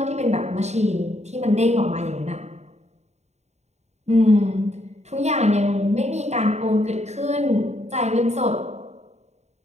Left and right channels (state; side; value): late; left; 0.32 ms